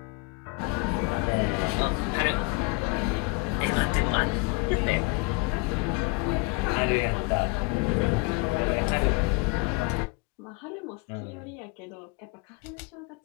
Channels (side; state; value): right; quieter; 28.4 dB